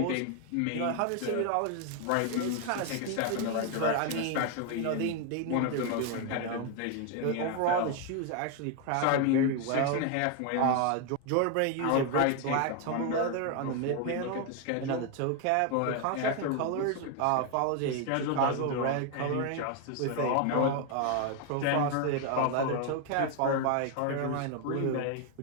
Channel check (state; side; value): different; both; correlation 0.01